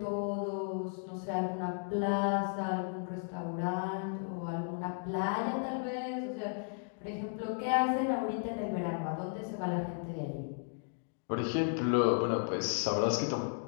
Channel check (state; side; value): silent; right; 55 dB below the other